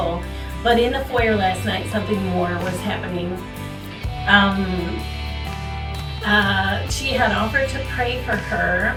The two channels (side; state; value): both; identical; correlation 1.00